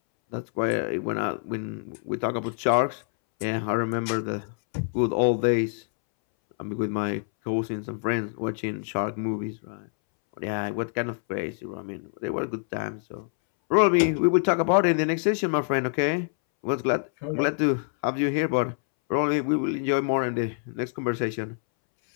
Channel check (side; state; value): right; silent; 61 dB below the other